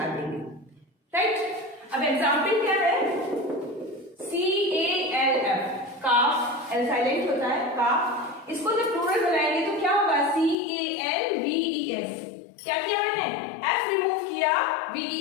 देंगे. राइट, अब एग्जाम्पल क्या है, CALF, काफ, एल साइलेंट होता है, काफ. इसको जब प्लूरल बनाएंगे तो क्या होगा, CALVES. क्या किया मैंने, F रिमूव किया,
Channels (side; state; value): right; drops out; at 10.6 s